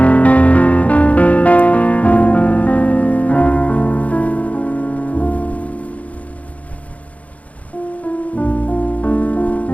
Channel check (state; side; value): late; right; 0.067 ms